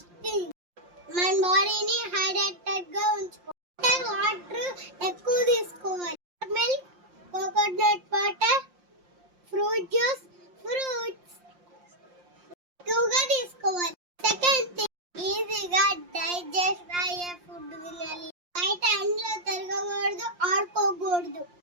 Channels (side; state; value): left; late; 5.7 ms